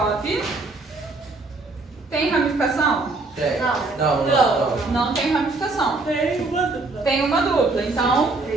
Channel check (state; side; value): quieter; left; 3.4 dB